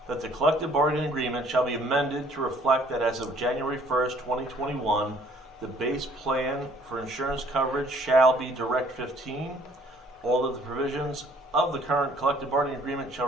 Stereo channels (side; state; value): both; normal; correlation 0.59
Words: that the collective bargaining agreement shall be amended to reflect that as of January 1st, 2021, the base plan for insurance coverage shall be Direct 15. All of the provisions of the current collective bargaining agreement shall